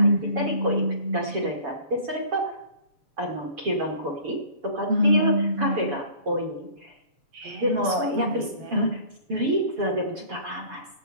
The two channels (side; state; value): left; late; 7.0 ms